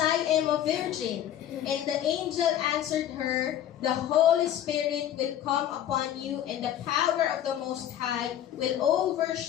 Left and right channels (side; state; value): right; quieter; 11.0 dB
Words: am a virgin?" And the angel answered her, "The Holy Spirit will come upon you, and the power of the Most High will